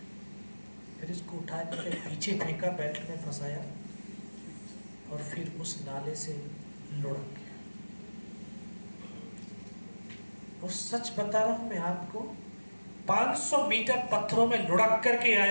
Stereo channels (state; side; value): inverted; both; correlation -1.00